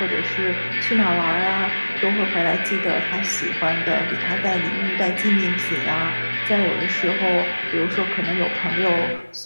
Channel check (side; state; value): both; inverted; correlation -1.00